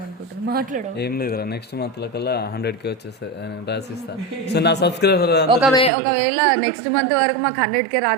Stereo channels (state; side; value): drops out; left; at 5.9 s